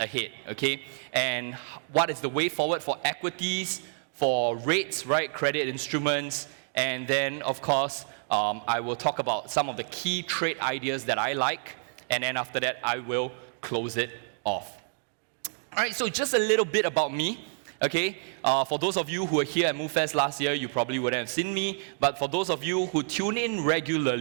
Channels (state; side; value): silent; left; digital silence